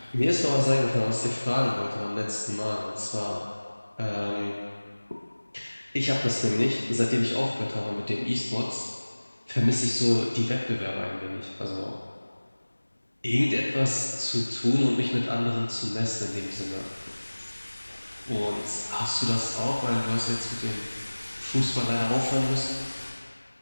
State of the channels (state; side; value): inverted; both; correlation -1.00